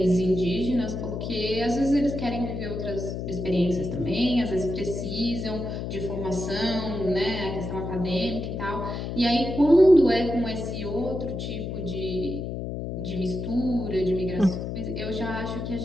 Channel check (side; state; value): left; noise; hum, 5 dB below the sound